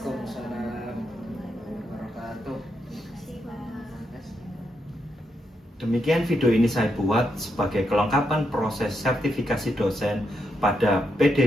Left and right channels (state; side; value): normal; both; correlation 0.82